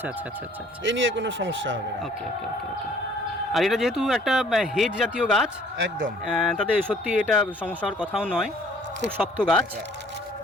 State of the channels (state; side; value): normal; both; correlation 0.56